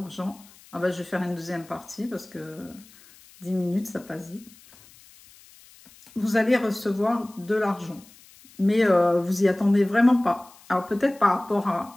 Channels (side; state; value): left; noise; hiss, 25 dB below the sound